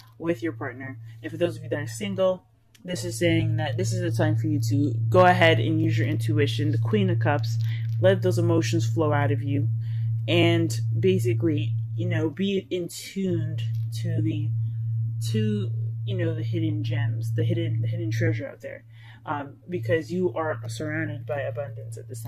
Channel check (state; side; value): identical; both; correlation 1.00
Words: with your partner. And for those of you that are single, this is saying that this is the time for you to go ahead and use your intuition, the Queen of Cups, let those emotions flow out of you, and basically, be in tuned to the hidden gems, the hidden treasure out there, because you are surrounded by abundance at this